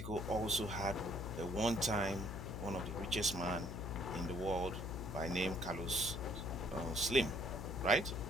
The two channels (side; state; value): left; noise; hum, 5 dB below the sound